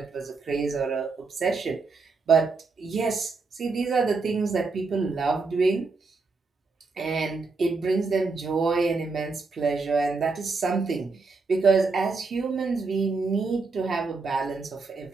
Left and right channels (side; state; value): left; quieter; 4.2 dB